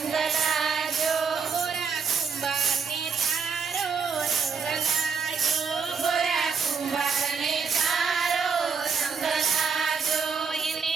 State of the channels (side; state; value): left; quieter; 5.7 dB